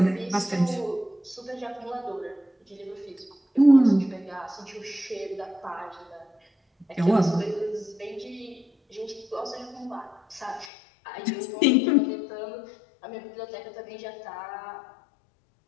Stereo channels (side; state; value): right; drops out; at 10.7 s